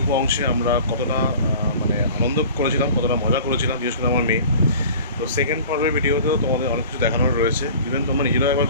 অংশে আমরা কতটা আনন্দ করেছিলাম, কতটা মজা করেছিলাম, বিশেষ করে আমার মেয়ে। তো সেকেন্ড পর্বের ভিডিওতেও তোমাদের অনেক কিছু দেখানোর রয়েছে, ইভেন তোমরা নিজেরাও একবার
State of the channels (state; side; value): inverted; both; correlation -0.43